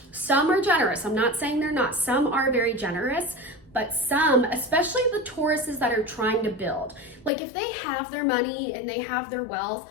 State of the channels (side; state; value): right; drops out; at 7.3 s